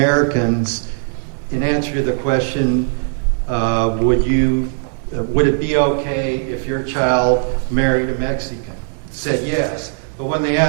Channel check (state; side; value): silent; left; 58 dB below the other